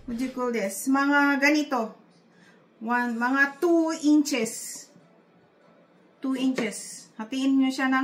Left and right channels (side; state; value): both; identical; correlation 1.00